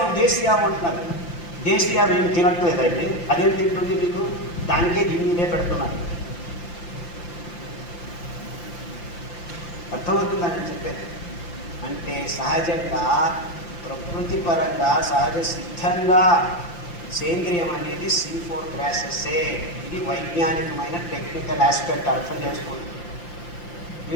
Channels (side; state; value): right; late; 5.8 ms